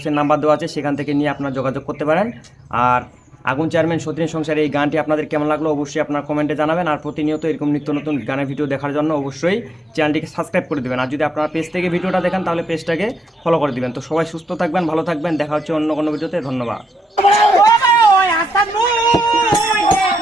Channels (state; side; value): normal; both; correlation 0.84